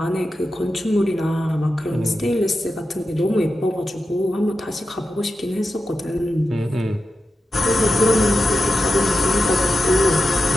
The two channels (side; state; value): both; normal; correlation 0.90